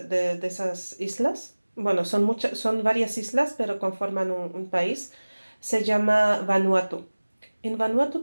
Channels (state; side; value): inverted; both; correlation -1.00